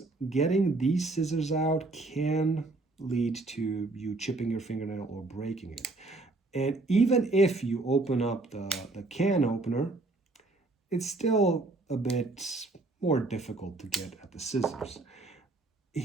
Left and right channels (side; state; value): left; quieter; 3.1 dB